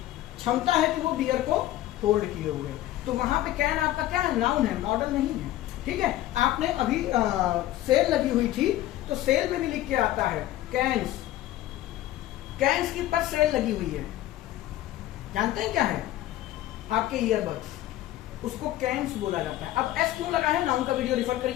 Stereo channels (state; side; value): quieter; right; 14.5 dB